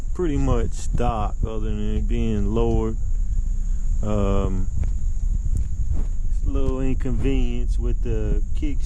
pretty much stock other than it being lowered. A little inconvenience with the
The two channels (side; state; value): both; identical; correlation 1.00